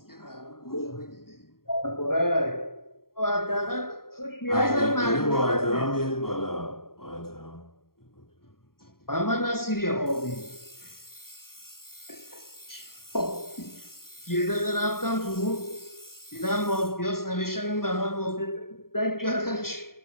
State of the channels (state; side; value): late; right; 0.93 ms